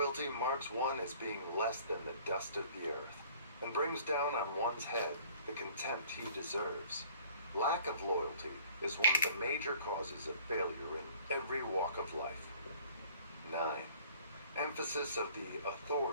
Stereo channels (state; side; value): inverted; both; correlation -0.52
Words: marks one as being less than the dust of the earth, and brings down on one's head the contempt he deserves. Lack of loyalty is one of the major causes of failure in every walk of life. 9. Emphasis of the